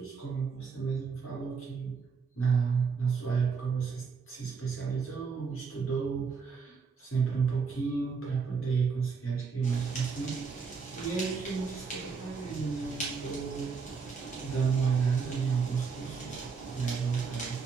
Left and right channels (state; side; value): quieter; left; 5.4 dB